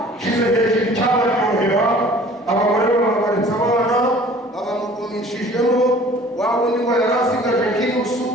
shize hejuru icyabaryohera, abagore bababaritse abana, abamugumishijemo, wa wundi ngo yari asigaje nk'inusu,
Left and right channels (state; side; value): normal; both; correlation 0.49